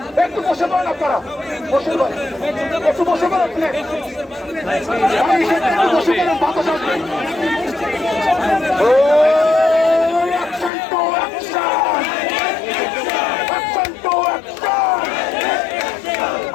একটু বসে পড়েন, আপনারা বসে পড়েন, একটু বসে পড়েন, বসে পড়েন, বাতাস আসবে।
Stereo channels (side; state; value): right; drops out; at 10.7 s